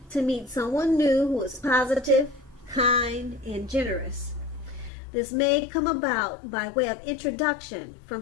to meet someone new who is positive, kind, and generous. This may come about by way of introduction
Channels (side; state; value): right; drops out; at 4.9 s